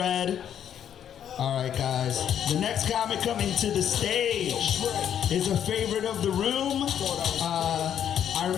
All right, guys. The next comic coming to the stage is a favorite of the room. I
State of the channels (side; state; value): right; quieter; 9.5 dB